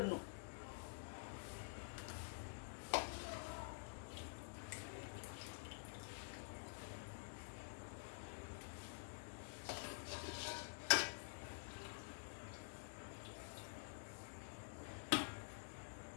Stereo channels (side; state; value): right; silent; digital silence